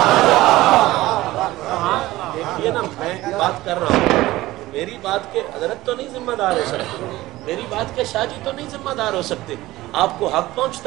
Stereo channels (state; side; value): quieter; left; 17.4 dB